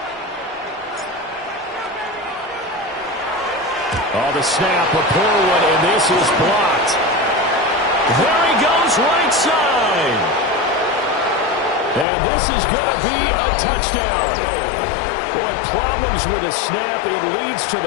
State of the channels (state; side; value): drops out; right; at 12.1 s